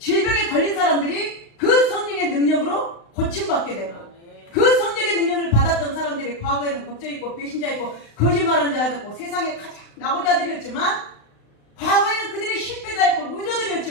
걸린 사람들이 그 성령의 능력으로 고침받게 되고 그 성령의 능력을 받았던 사람들이 과거에는 겁쟁이 있고 배신자 있고 거짓말하는 자가 있고 세상에 가장 낙오자들이었지만 과거에는 그들이 실패자였고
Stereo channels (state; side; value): late; right; 35 ms